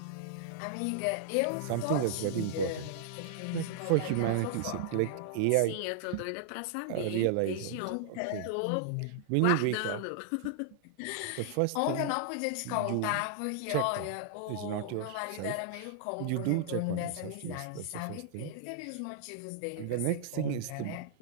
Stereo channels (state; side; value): different; both; correlation -0.01